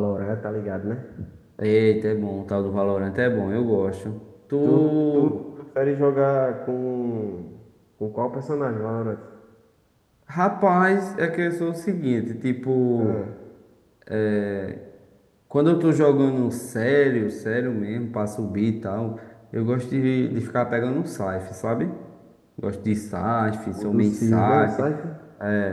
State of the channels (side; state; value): both; identical; correlation 1.00